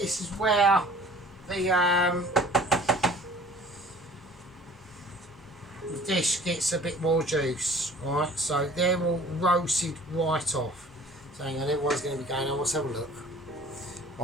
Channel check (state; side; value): normal; both; correlation 0.48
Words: dish gets a bit more juice. Alright, so they're all roasted right off. So hang on, everyone's going to be going on. Let's have a look.